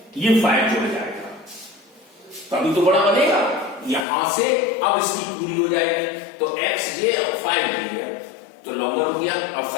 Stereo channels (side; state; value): right; drops out; at 4.0 s